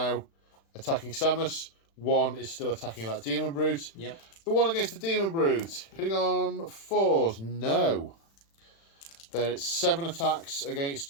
attacking Samus. 1 is still attacking that Demon Brute. Yep. The one against the Demon Brute. Hitting on 4s. No. Then it's 7 attacks against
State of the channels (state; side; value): late; right; 36 ms